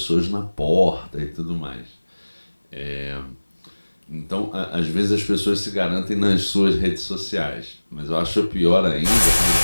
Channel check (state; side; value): inverted; both; correlation -1.00